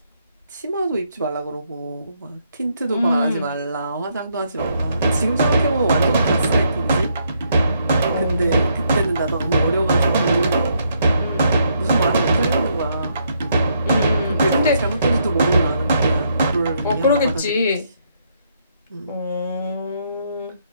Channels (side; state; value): both; inverted; correlation -0.73